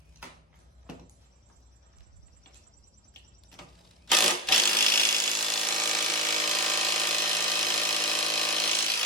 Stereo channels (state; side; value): normal; both; correlation 0.15